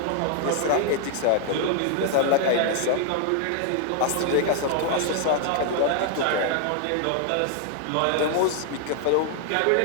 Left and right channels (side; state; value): both; different; correlation 0.00